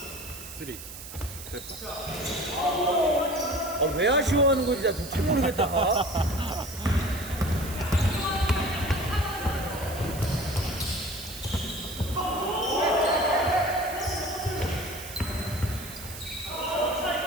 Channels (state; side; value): noise; right; hiss, 12 dB below the sound